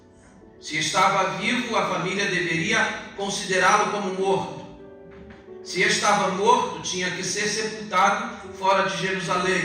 Se estava vivo, a família deveria considerá-lo como morto. Se estava morto, tinha que ser sepultado fora de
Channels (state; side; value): identical; both; correlation 1.00